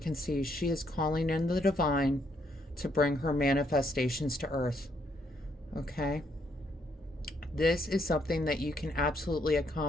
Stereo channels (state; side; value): normal; both; correlation 0.73